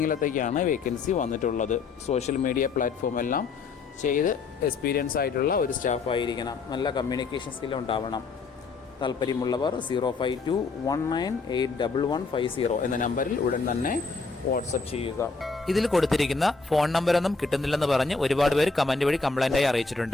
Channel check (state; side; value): quieter; right; 4.3 dB